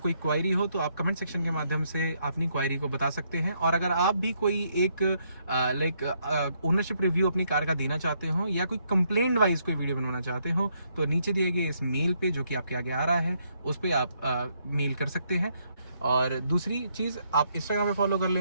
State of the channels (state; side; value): inverted; both; correlation -0.74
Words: क्वायरी हो तो आप कमेंट सेक्शन के माध्यम से अपनी क्वायरी को बता सकते हैं। और अगर आप भी कोई एक ओनरशिप रिव्यू अपनी कार का देना चाहते हो या कोई कंप्लेंट वाइज कोई वीडियो बनवाना चाहते हो तो नीचे दिए गए इस मेल पे जो कि आपके आगे आ रहा है उस पर आप मेल कर सकते हैं। और दूसरी चीज़, आप इंस्टाग्राम पे फॉलो कर